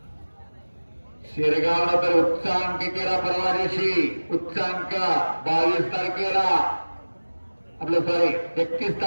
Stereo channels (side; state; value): both; inverted; correlation -1.00